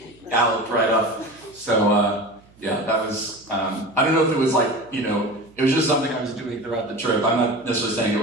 galloped right up. So yeah, that was, I don't know if it was it was just something I was doing throughout the trip. I'm not necessarily saying it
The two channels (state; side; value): noise; right; hum, 28 dB below the sound